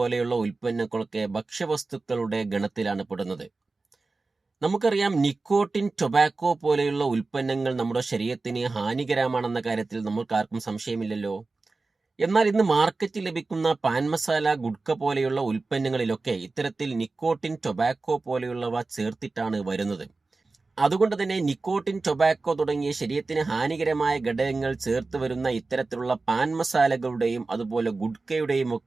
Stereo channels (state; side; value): quieter; left; 3.6 dB